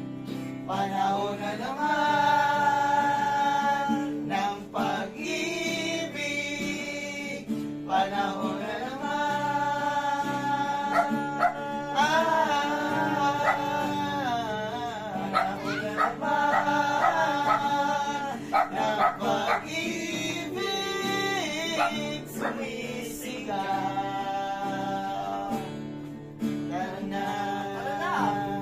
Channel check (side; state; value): both; identical; correlation 1.00